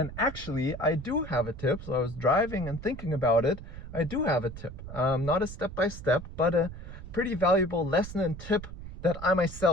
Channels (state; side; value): noise; right; rumble, 12 dB below the sound